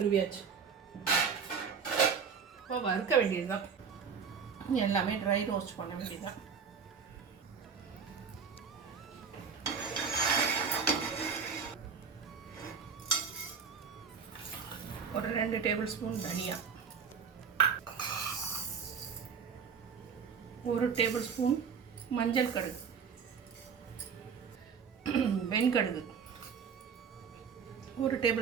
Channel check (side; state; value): left; quieter; 6.2 dB